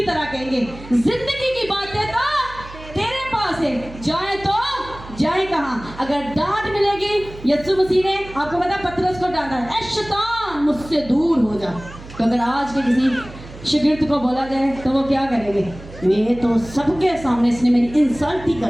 तरह कहेंगे जिंदगी की बातें तो तेरे पास है, जाए तो जाए कहाँ? अगर डांट मिलेगी, यीशु मसीह ने आपको पता पतरस को डांटा, ऐ शैतान मुझसे दूर हो जा। तो अगर आज के किसी शागिर्द को बोला जाए तो वो क्या करेंगे? मैं तो सबके सामने इसने मेरी इंसल्ट ही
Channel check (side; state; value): right; noise; hum, 16 dB below the sound